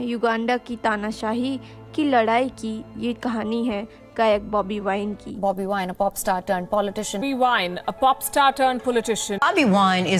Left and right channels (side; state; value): both; identical; correlation 1.00